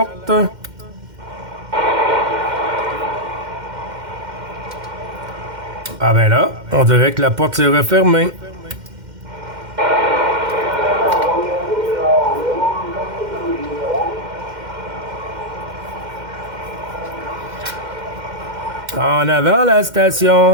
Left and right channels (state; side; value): late; left; 2.1 ms